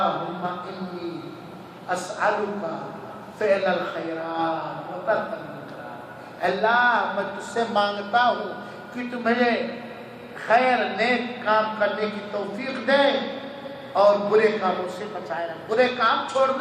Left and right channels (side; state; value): both; identical; correlation 1.00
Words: انی اسألک فعل الخیرات و ترک المنکرات. اللہ میں تجھ سے مانگتا ہوں کہ تو مجھے خیر نیک کام کرنے کی توفیق دے اور برے کاموں سے بچائے رکھ، برے کام